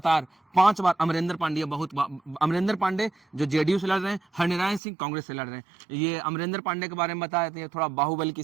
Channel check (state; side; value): drops out; left; at 4.8 s